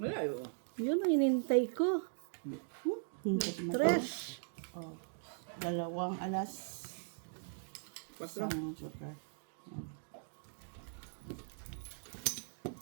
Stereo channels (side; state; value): left; silent; digital silence